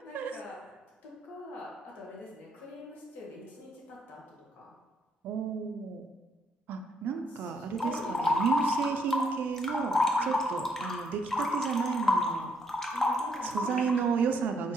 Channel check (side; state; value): both; normal; correlation 0.71